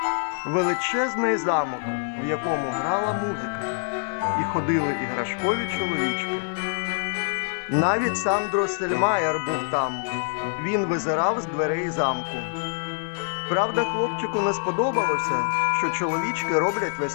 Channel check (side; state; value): right; silent; digital silence